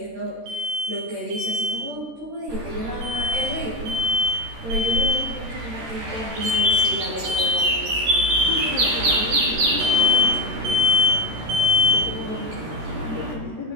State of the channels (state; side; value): late; left; 13 ms